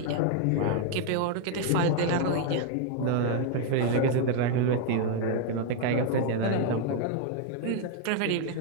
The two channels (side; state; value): both; different; correlation 0.00